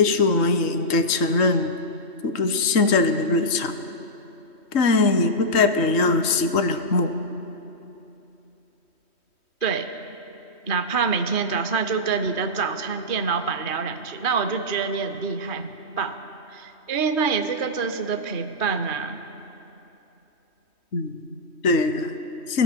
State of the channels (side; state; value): right; late; 3.1 ms